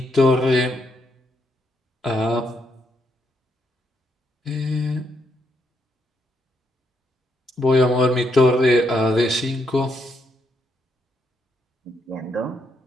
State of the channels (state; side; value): normal; both; correlation 0.77